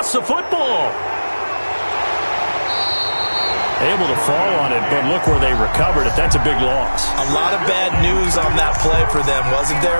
the football. Able to fall on it, but look where they recovered it. That's a big loss. A lot of bad news on that play for them, wasn't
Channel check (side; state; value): both; inverted; correlation -1.00